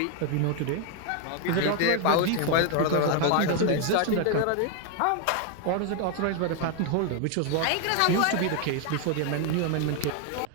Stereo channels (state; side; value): different; both; correlation 0.01